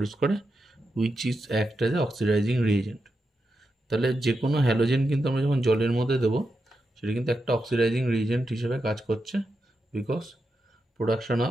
করে, which is act as A oxidising reagent. তাহলে যে কোনো হ্যালোজেন কিন্তু আমরা যখন জলের মধ্যে দেবো, সেটা কিন্তু একটা অক্সিডাইজিং রিএজেন্ট হিসেবে কাজ করছে, because production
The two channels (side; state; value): both; normal; correlation 0.87